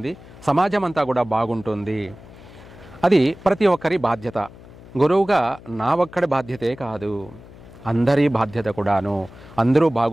సమాజం అంతా కూడా బాగుంటుంది. అది ప్రతి ఒక్కరి బాధ్యత. గురువుగా నా ఒక్కడి బాధ్యతే కాదు, అందరి బాధ్యత కూడాను. అందరూ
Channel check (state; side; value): noise; left; hum, 20 dB below the sound